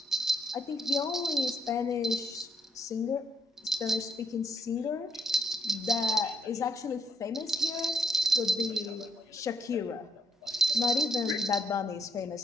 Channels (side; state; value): both; normal; correlation 0.72